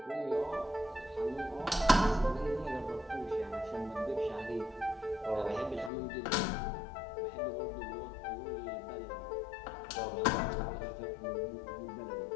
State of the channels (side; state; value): right; drops out; at 5.9 s